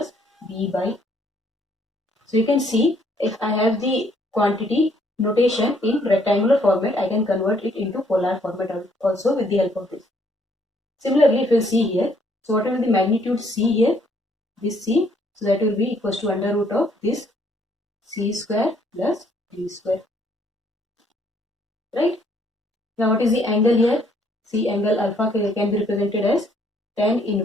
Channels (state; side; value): normal; both; correlation 0.66